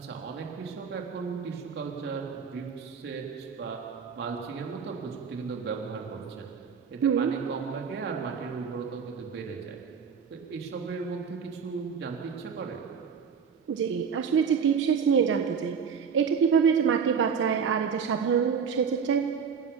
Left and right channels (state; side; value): quieter; left; 6.6 dB